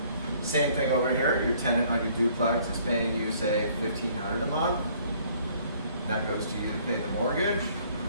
Same thing over here, your tenant on your duplex is paying you, say, $1,500 a month. That goes to you to pay the mortgage,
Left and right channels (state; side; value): inverted; both; correlation -0.59